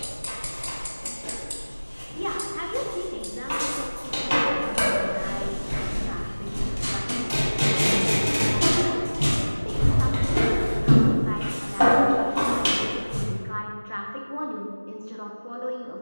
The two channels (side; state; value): both; inverted; correlation -1.00